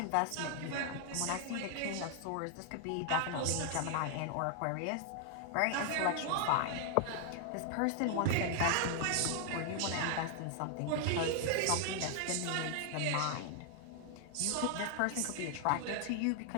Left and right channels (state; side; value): different; both; correlation 0.00